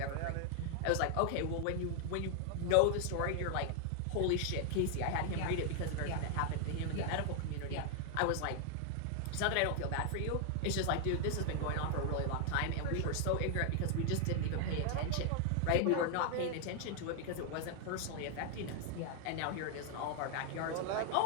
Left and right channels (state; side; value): different; both; correlation 0.00